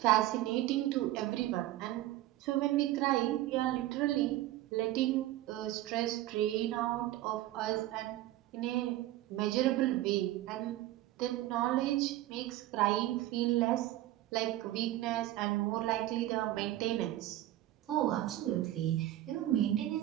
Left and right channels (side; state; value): left; quieter; 15.2 dB